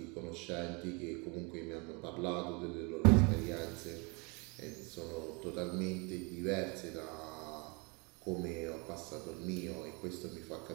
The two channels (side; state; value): left; quieter; 30.6 dB